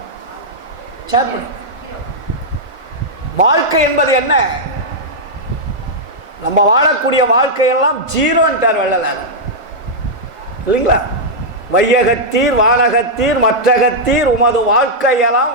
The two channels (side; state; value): left; late; 1.4 ms